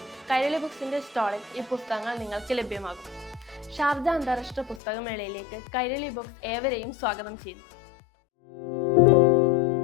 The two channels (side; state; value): right; drops out; at 4.8 s